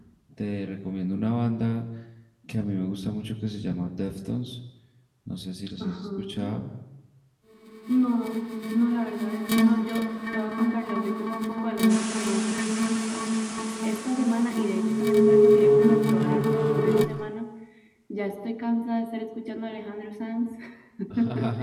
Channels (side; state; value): both; identical; correlation 1.00